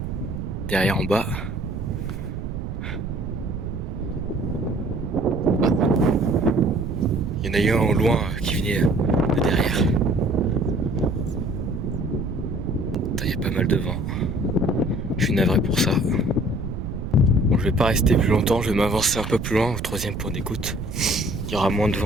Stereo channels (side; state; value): right; noise; rumble, 6 dB below the sound